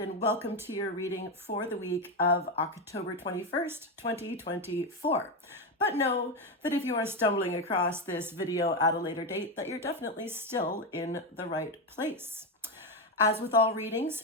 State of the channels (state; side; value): normal; both; correlation 0.10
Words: welcome to your reading for the week of October 21st, 2024. But know that if you are stumbling across this video at a later date, that you're definitely still in the right place. As with all readings,